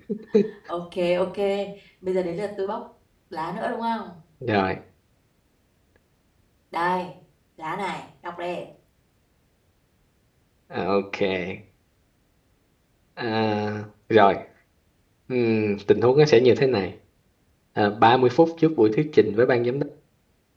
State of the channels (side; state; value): both; identical; correlation 1.00